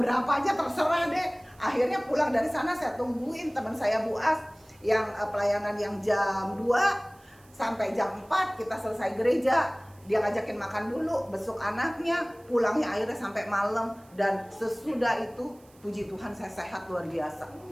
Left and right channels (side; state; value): right; noise; hiss, 29 dB below the sound